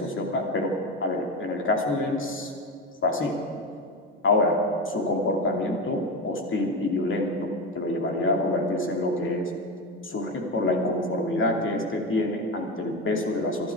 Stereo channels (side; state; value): both; normal; correlation 0.20